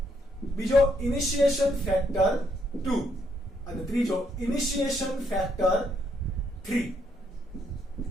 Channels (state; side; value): normal; both; correlation 0.74